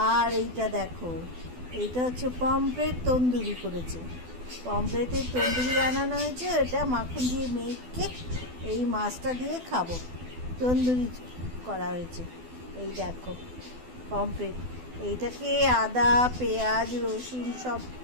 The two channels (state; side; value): late; left; 12 ms